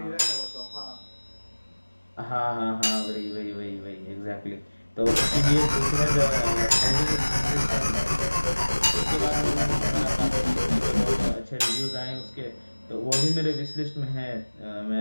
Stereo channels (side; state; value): both; inverted; correlation -1.00